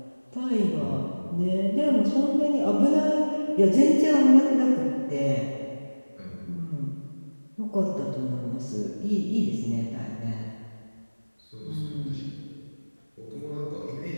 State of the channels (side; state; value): both; inverted; correlation -1.00